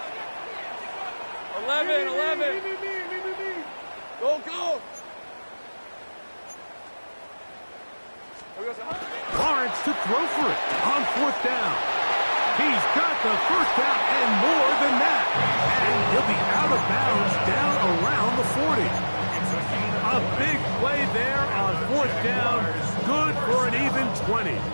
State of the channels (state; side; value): inverted; both; correlation -1.00